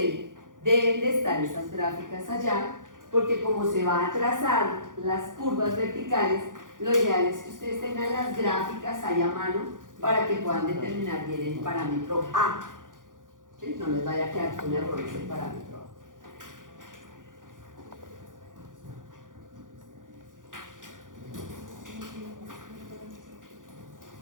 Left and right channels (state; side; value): late; left; 0.88 ms